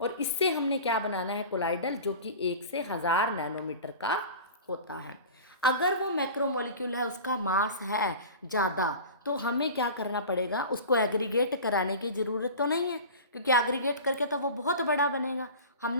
और इससे हमने क्या बनाना है, कोलाइडल, जो कि 1 से 1000 नैनोमीटर का होता है। अगर वो मैक्रोमोलिक्यूल है, उसका मास है ज़्यादा, तो हमें क्या करना पड़ेगा, उसको एग्रीगेट कराने की ज़रूरत तो नहीं है, क्योंकि एग्रीगेट करके तो वो बहुत बड़ा बनेगा।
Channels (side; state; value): both; inverted; correlation -0.36